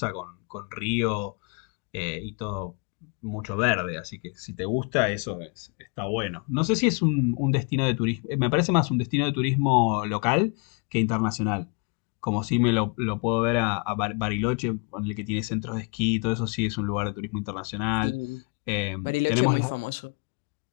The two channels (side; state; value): right; quieter; 35.3 dB